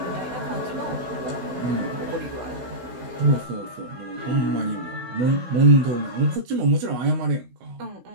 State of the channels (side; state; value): left; late; 16 ms